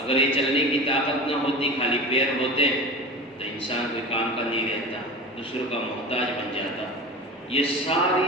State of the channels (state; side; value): normal; both; correlation 0.31